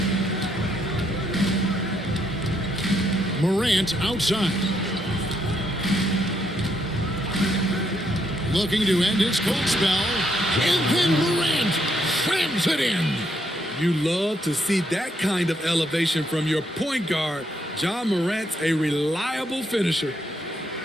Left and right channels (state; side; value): normal; both; correlation 0.75